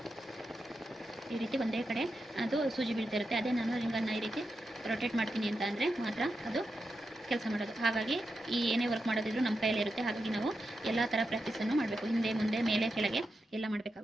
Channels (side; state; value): both; normal; correlation 0.88